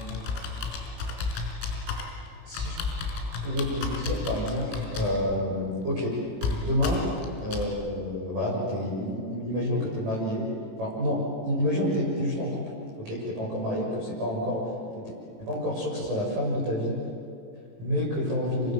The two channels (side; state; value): left; late; 18 ms